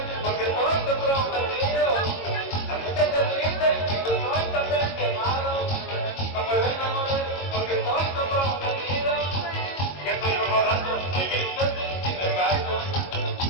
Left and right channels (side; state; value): right; late; 22 ms